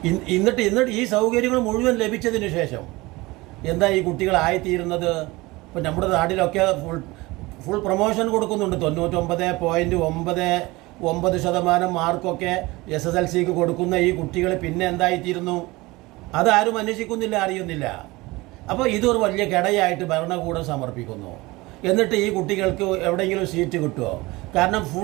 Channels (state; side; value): quieter; left; 21.6 dB